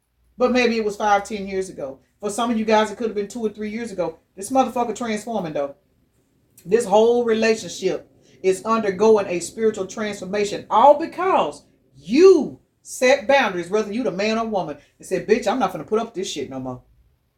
but maybe it was 5, 10 years ago. For some of you guys, it could have been 2 or 3 years ago. This motherfucker transforming though. This whole relationship is undergoing a spiritual transformation, all because you Set boundaries, whether you the man or woman, and say, bitch, I'm not gonna put up with this shit no more.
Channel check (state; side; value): identical; both; correlation 1.00